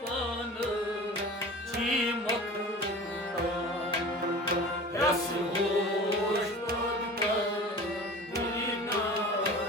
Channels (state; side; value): normal; both; correlation 0.38